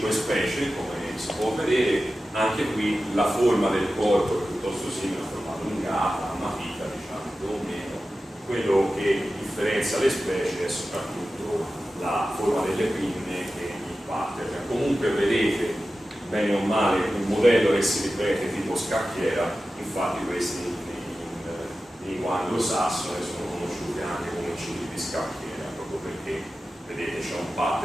specie come si può vedere. Anche qui la forma del corpo è piuttosto simile, a forma allungata, a matita, diciamo, più o meno. Quello che differenzia le specie è soprattutto la forma delle pinne e il pattern. Comunque vedete bene o male un modello che si ripete tipo scacchiera, infatti questi in lingua anglosassone sono conosciuti anche come cili di scacchiera, proprio perché vedete c'è un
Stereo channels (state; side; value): normal; both; correlation 0.94